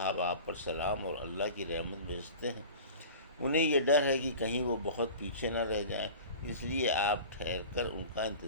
آپ پر سلام اور اللہ کی رحمت بھیجتے ہیں۔ انہیں یہ ڈر ہے کہ کہیں وہ بہت پیچھے نہ رہ جائیں، اس لیے آپ ٹھہر کر ان کا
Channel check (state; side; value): inverted; both; correlation -0.38